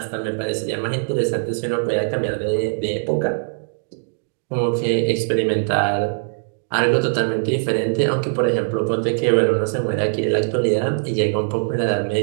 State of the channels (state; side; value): silent; left; digital silence